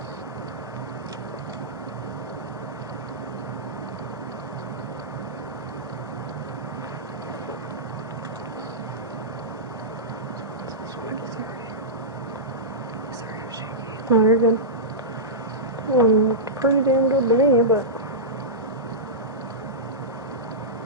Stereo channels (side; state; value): both; normal; correlation -0.14